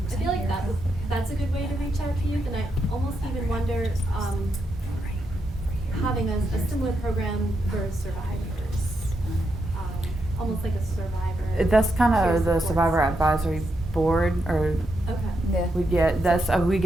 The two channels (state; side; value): normal; both; correlation 0.82